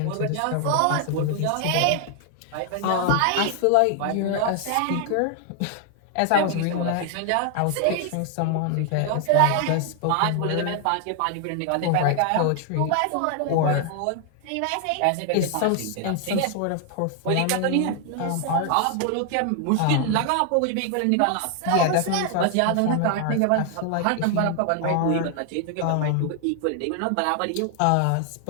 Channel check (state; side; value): different; both; correlation 0.00